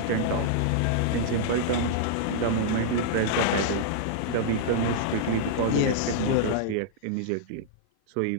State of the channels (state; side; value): different; both; correlation -0.01